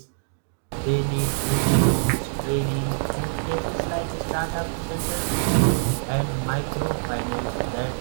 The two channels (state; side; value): silent; left; digital silence